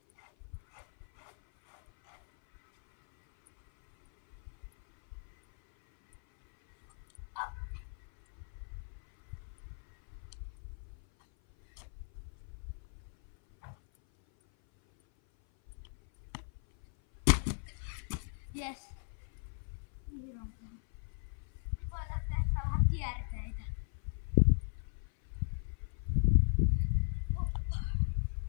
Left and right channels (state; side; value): silent; right; 53 dB below the other